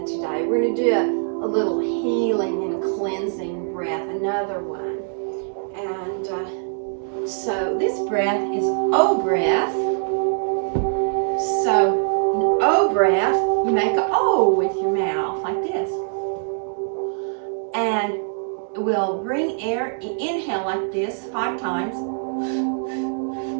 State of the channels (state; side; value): silent; left; digital silence